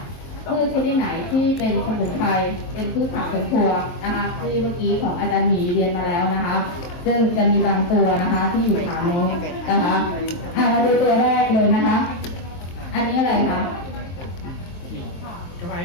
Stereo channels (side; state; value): right; late; 23 ms